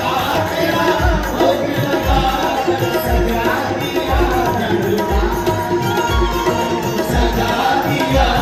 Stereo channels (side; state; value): both; identical; correlation 1.00